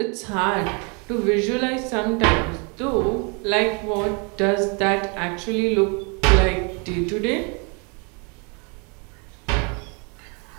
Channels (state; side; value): quieter; left; 33.8 dB